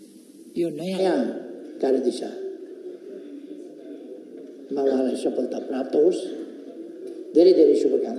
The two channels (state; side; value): identical; both; correlation 1.00